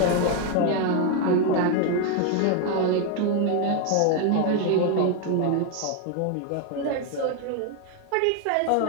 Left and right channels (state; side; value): different; both; correlation 0.01